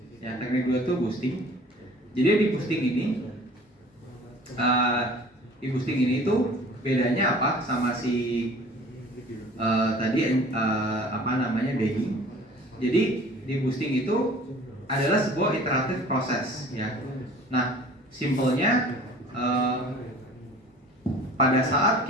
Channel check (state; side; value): normal; both; correlation 0.48